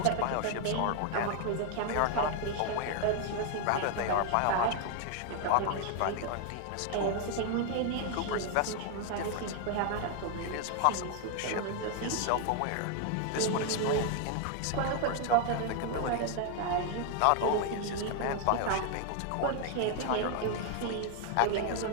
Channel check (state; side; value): different; both; correlation 0.00